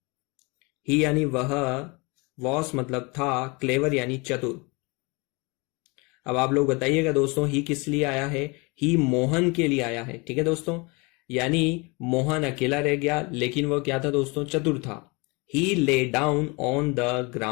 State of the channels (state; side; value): quieter; right; 28.2 dB